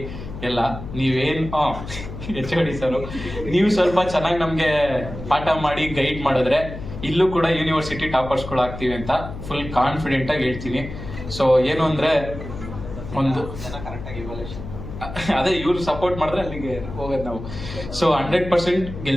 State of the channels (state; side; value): noise; left; hum, 10 dB below the sound